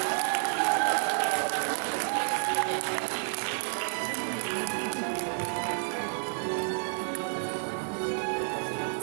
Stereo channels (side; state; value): left; silent; digital silence